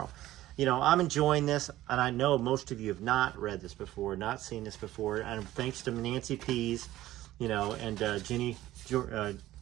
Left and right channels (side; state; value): left; quieter; 15.1 dB